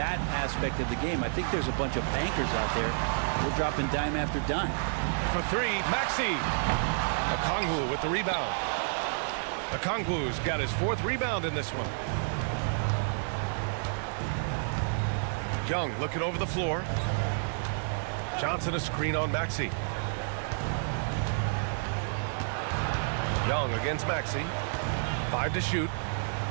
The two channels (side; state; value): left; silent; digital silence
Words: aspect of the game. I think there's a bunch of bankers out there. They're dropping dime after dime. For three, Maxey. Okongwu with the rebound. Okongwu's got his 4th rebound in this one. Young looking over the floor. Johnson a screen on Maxey. Young against Maxey. 5 to shoot.